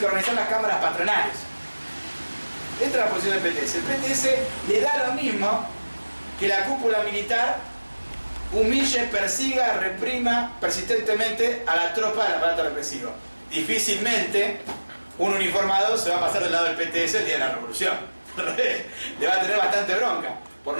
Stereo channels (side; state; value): both; inverted; correlation -1.00